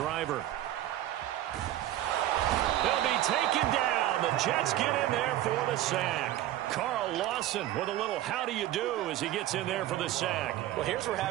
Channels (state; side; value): quieter; left; 13.7 dB